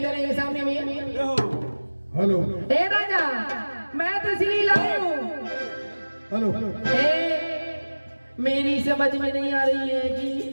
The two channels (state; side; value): inverted; both; correlation -1.00